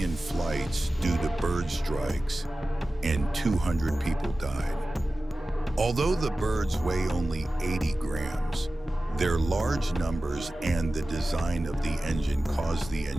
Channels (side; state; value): both; normal; correlation 0.96